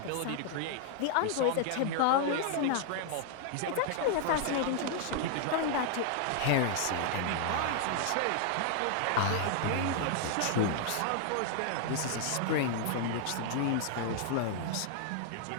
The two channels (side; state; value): both; different; correlation 0.00